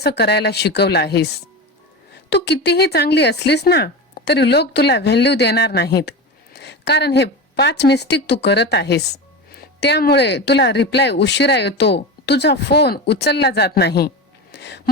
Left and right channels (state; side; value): normal; both; correlation 0.24